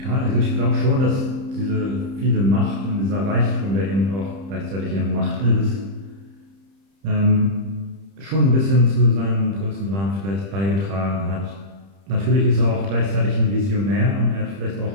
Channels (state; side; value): late; left; 30 ms